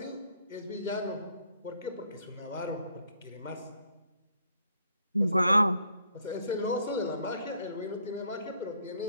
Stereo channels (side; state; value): both; inverted; correlation -0.67